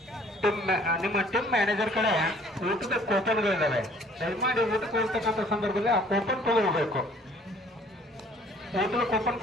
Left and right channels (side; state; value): both; normal; correlation 0.56